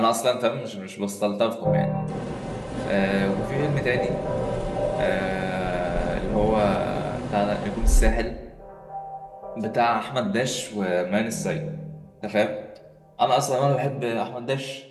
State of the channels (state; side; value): identical; both; correlation 1.00